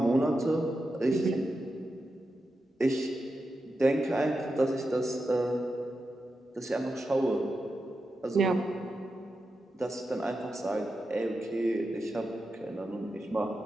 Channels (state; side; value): normal; both; correlation 0.89